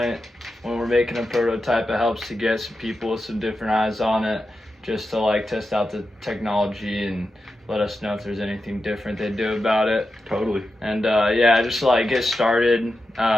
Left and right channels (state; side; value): normal; both; correlation 0.90